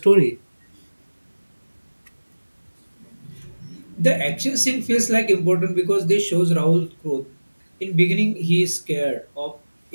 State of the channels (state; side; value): inverted; both; correlation -1.00